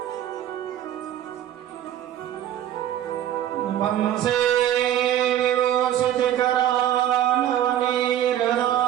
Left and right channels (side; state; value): left; quieter; 11.5 dB